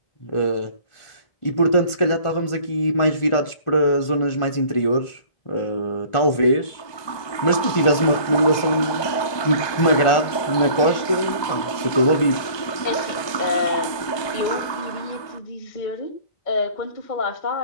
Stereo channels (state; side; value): late; right; 1.5 ms